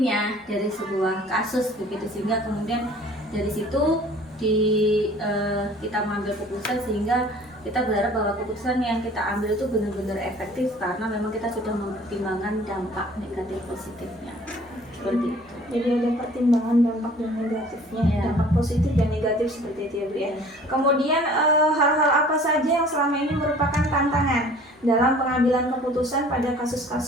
dari sebuah kasus begitu, sehingga kemudian dari situ kita mengambil keputusan, sehingga kita berharap bahwa keputusan yang kita ambil itu benar-benar efektif karena memang kita sudah mempertimbangkan dampak negatif positifnya seperti itu. Jadi ada pertimbangan dampak dan negatifnya, Iya. dampak positif dan negatif seperti itu ya Bu ya. Kemudian hal-hal apa saja yang selama ini merupakan tantangan dalam pengambilan keputusan pada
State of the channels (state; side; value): normal; both; correlation 0.50